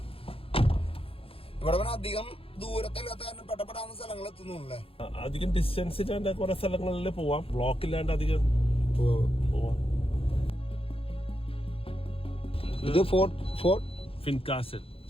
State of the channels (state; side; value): late; right; 0.27 ms